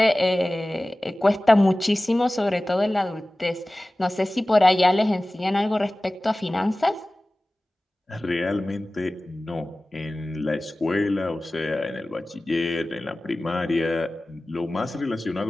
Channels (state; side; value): normal; both; correlation 0.97